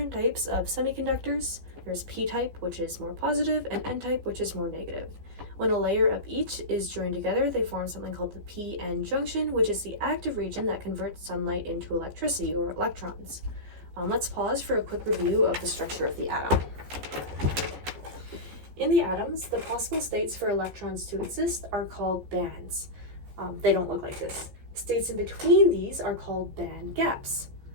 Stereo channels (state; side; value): late; left; 15 ms